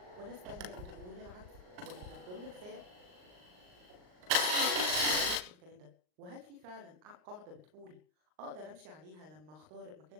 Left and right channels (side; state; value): left; late; 39 ms